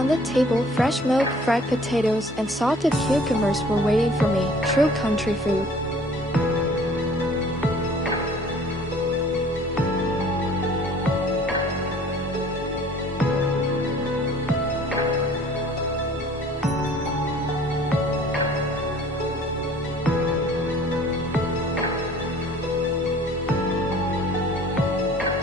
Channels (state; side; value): normal; both; correlation 0.51